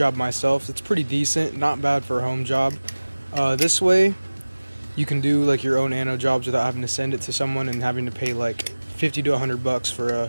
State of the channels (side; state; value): both; inverted; correlation -1.00